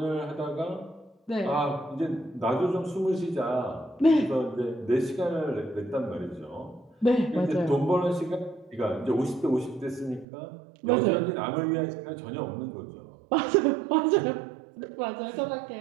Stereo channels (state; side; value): drops out; left; at 10.2 s